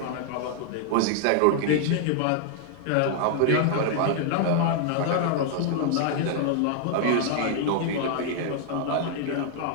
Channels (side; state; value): both; different; correlation -0.01